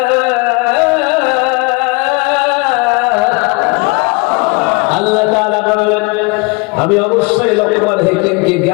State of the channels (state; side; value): quieter; right; 28.3 dB